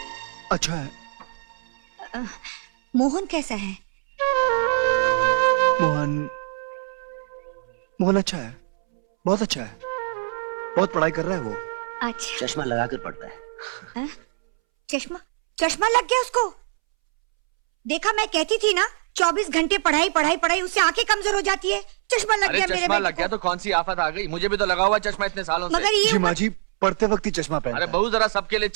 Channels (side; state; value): left; silent; 63 dB below the other